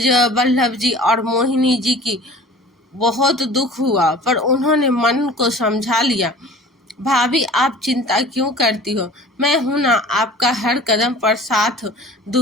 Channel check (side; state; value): both; normal; correlation 0.44